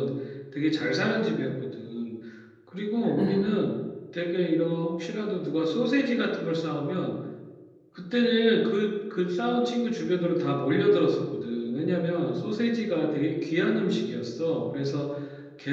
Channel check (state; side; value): identical; both; correlation 1.00